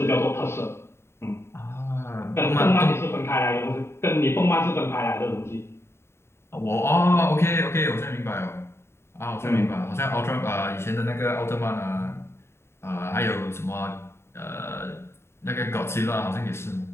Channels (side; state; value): right; late; 0.12 ms